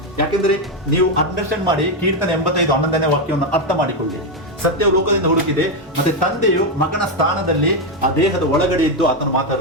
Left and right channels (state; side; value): normal; both; correlation 0.06